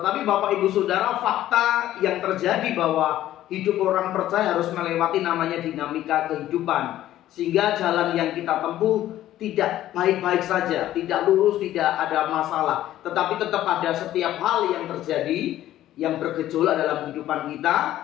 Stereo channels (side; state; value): right; quieter; 13.4 dB